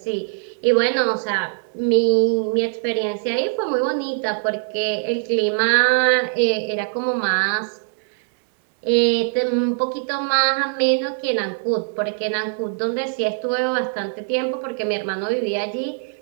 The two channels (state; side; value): silent; left; 65 dB below the other